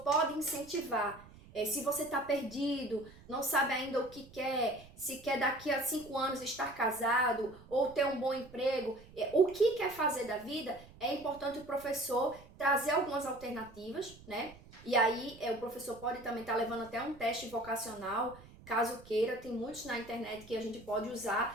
pode incentivar. Se você está perdido, não sabe ainda o que quer, se quer daqui a 5 anos estar casado ou ter um bom emprego, o que quer fazer da vida, é importante o professor trazer algumas alternativas, né? E aí o professor pode também estar levando até um teste vocacional, caso queira, tem muitos na internet que a gente pode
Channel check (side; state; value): right; noise; rumble, 21 dB below the sound